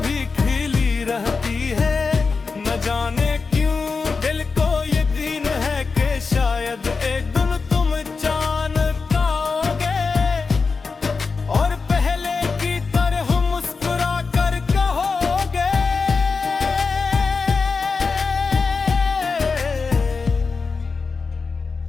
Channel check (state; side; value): quieter; right; 4.7 dB